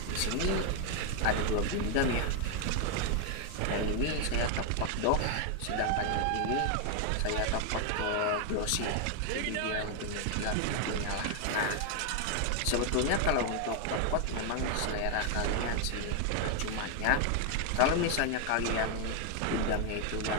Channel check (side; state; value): both; different; correlation 0.00